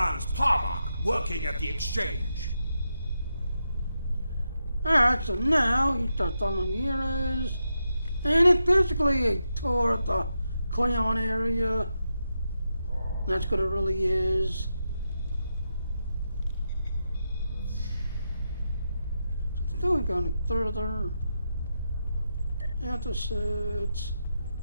Parmach, working at the exchange. Alright, so now you start following the heroes. And it's basically a tour of the Klingon area. That's what it really is. So still going further. Episodes.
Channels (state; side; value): inverted; both; correlation -0.86